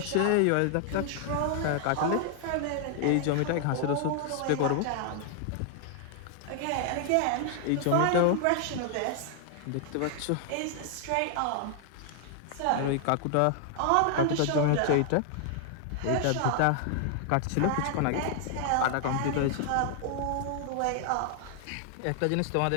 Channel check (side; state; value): both; different; correlation 0.00